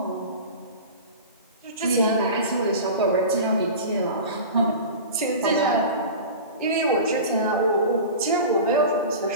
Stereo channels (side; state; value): both; inverted; correlation -0.33